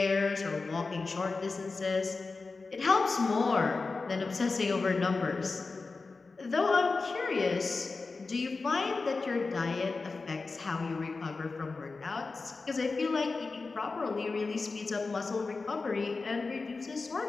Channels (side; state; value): right; quieter; 4.0 dB